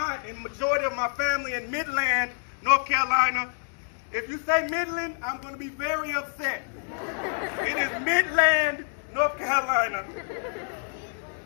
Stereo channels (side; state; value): right; silent; 60 dB below the other